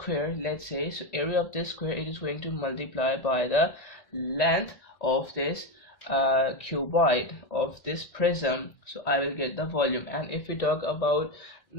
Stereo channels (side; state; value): right; late; 1.9 ms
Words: let's say, so area of this square, it is going to multiply by the length of this cuboid, of this prism. So I will get the volume. And if we talk about